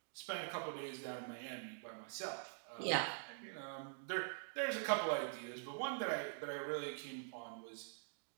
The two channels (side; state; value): left; silent; digital silence